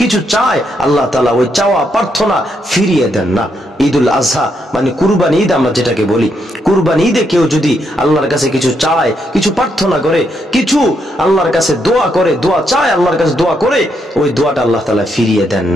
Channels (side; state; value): both; normal; correlation 0.78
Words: চায়, আল্লাহ তাআলা ওই চাওয়া প্রার্থনা ফিরিয়ে দেন না। ঈদুল আজহা মানে কুরবানি ঈদ, আমরা যেটাকে বলি কুরবানি ঈদে কেউ যদি আল্লাহর কাছে কিছু চায়, কিছু প্রার্থনা করে, কিছু আল্লাহর কাছে দোয়া করে, দোয়া চায়, আল্লাহর কাছে দোয়া করে, ওই দোয়াটা আল্লাহ তাআলা ফিরিয়ে দেন